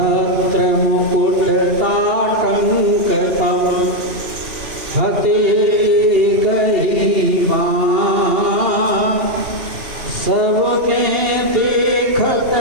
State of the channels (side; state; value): left; late; 2.8 ms